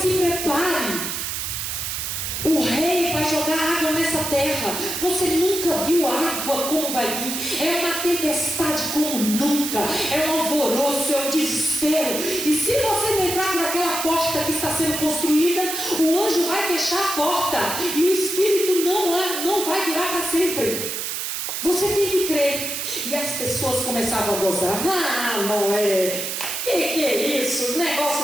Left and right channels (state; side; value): noise; right; hiss, 3 dB below the sound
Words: se prepare. O rei vai jogar água nessa terra. Você nunca viu água como vai vir. É uma tempestade como nunca. É um alvoroço, é um desespero. E se você não entrar por aquela porta que está sendo construída, o anjo vai fechar a porta. E o espírito não vai durar para sempre. Você tem que crer. E as pessoas começavam a gozar. Ah, Noé, que Que é isso?